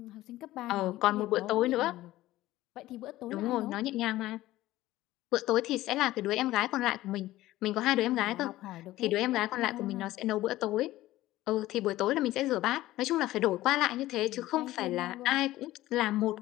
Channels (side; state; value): right; quieter; 16.1 dB